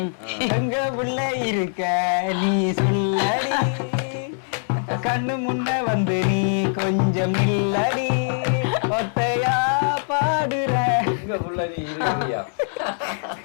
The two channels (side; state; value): right; silent; 60 dB below the other